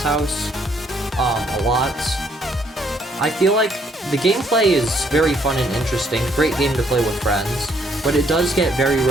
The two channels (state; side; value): normal; both; correlation 0.68